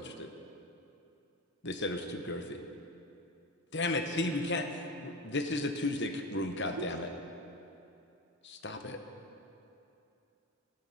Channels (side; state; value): both; normal; correlation 0.24